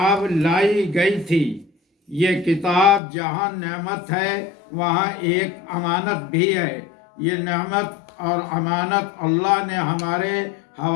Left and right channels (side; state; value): right; drops out; at 3.0 s